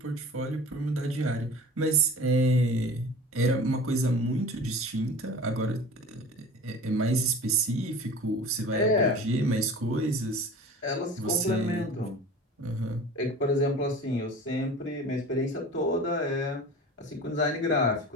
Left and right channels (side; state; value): both; normal; correlation 0.39